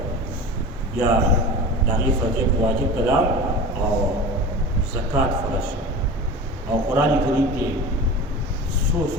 بیا د هغې فرضیت واجب ته لاړ او زکات فرض شو او قرآن کریم کې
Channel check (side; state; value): both; normal; correlation 0.33